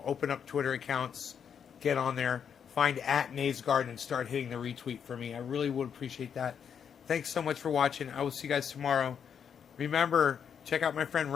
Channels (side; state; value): right; quieter; 7.6 dB